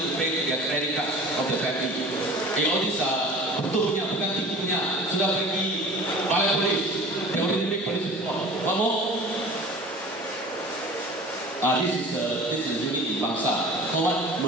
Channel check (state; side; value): normal; both; correlation 0.41